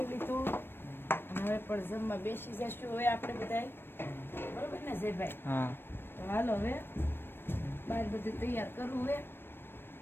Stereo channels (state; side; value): late; right; 0.10 ms